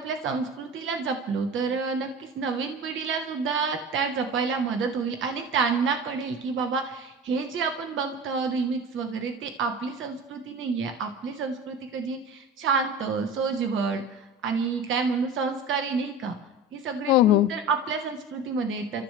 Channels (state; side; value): normal; both; correlation 0.33